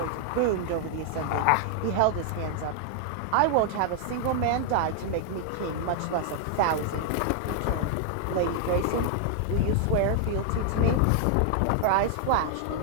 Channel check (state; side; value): different; both; correlation 0.00